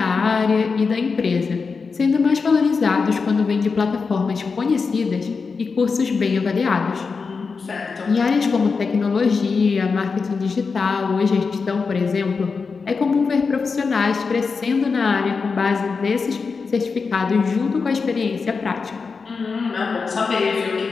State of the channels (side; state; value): right; quieter; 4.9 dB